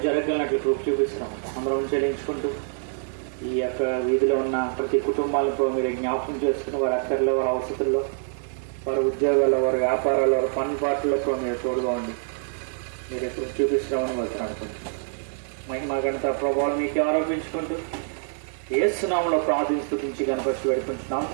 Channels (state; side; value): silent; left; digital silence